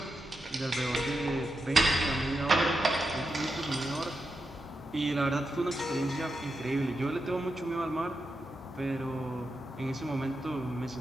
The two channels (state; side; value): normal; both; correlation 0.87